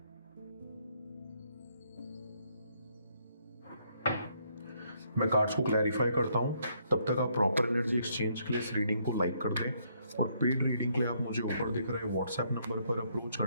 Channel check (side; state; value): both; inverted; correlation -0.71